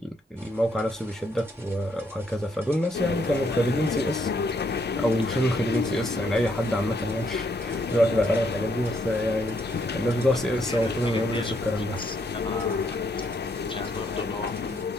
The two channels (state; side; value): normal; both; correlation 0.73